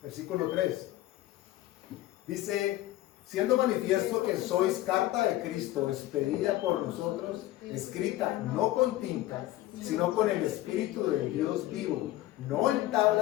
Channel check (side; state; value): right; quieter; 15.6 dB